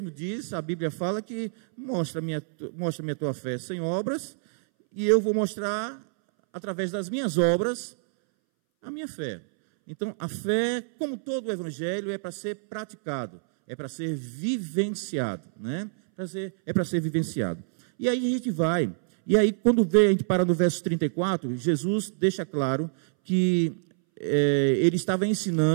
diz, a Bíblia fala que mostra-me a tua fé sem obras, e eu vou mostrar, através das minhas obras, a minha fé. Então, a fé, como todo o Evangelho, é para ser praticado, é para ser vivenciado, né? É para ser vivenciado. E aí a gente vai, e aí quando a gente para no verso 34, Jesus deixa claro que ele estava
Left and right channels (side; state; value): left; silent; 60 dB below the other